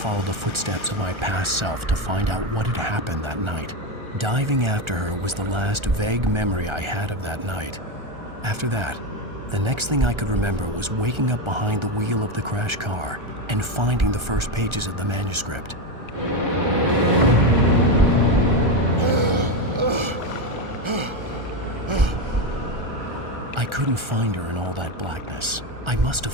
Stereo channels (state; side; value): late; left; 1.3 ms